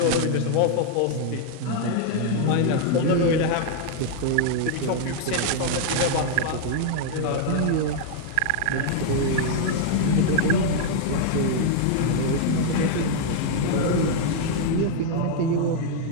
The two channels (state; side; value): different; both; correlation 0.00